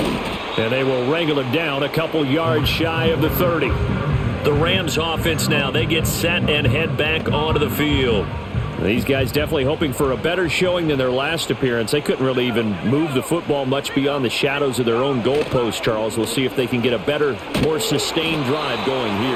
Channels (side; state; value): both; identical; correlation 1.00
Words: And they will wrangle him down a couple yards shy of the 30. The Rams offense now, they get set and head back onto the field. These guys definitely hoping for a better showing than their last appearance. They couldn't really even move the football much beyond the shadows of their own goalpost, Charles. We'll see if they can get a better, more sustained drive going